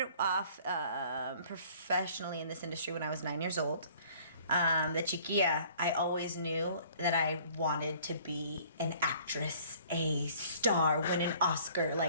off professionally in this industry when I was 9 years old. The chiquilla, I always knew that I wanted to be an actress, a star, win an Oscar.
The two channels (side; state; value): both; inverted; correlation -0.54